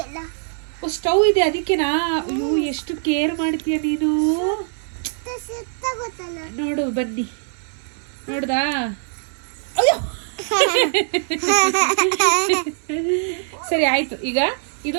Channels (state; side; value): silent; left; 64 dB below the other